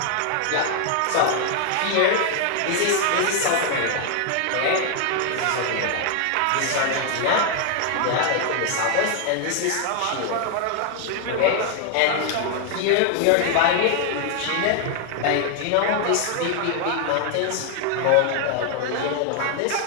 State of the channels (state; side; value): different; both; correlation 0.00